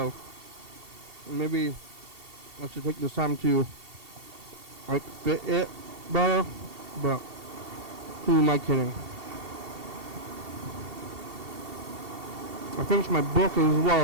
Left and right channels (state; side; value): late; left; 2.7 ms